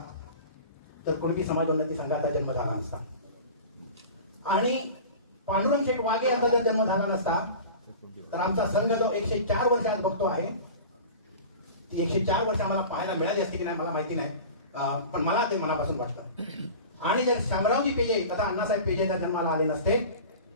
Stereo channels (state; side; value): inverted; both; correlation -0.36